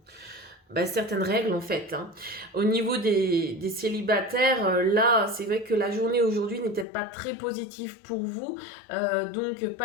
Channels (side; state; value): right; drops out; at 6.9 s